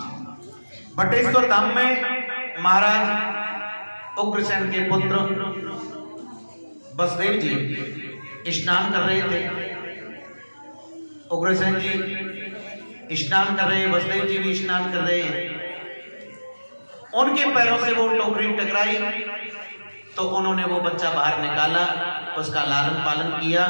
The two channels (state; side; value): inverted; both; correlation -1.00